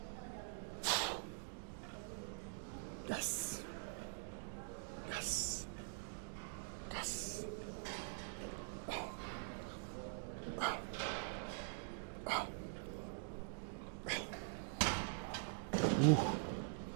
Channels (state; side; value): silent; left; digital silence